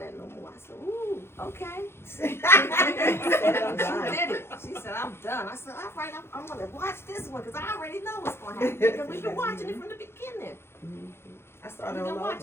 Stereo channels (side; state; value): right; late; 0.12 ms